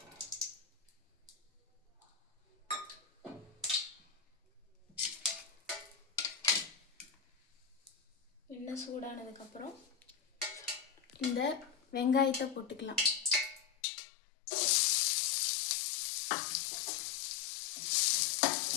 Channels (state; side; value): drops out; right; at 13.7 s